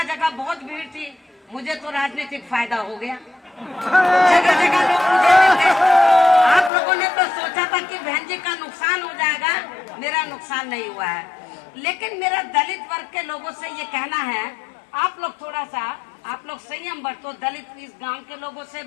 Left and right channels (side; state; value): right; drops out; at 6.7 s